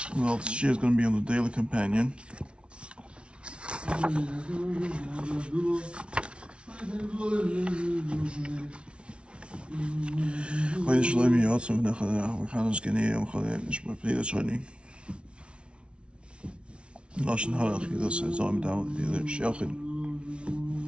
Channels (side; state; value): left; late; 0.059 ms